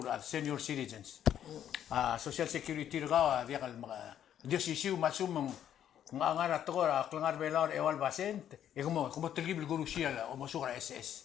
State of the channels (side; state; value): right; quieter; 10.2 dB